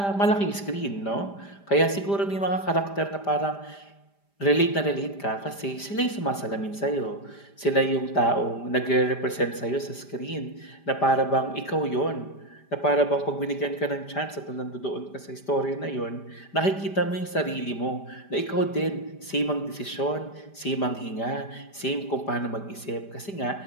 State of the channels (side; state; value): right; late; 5.0 ms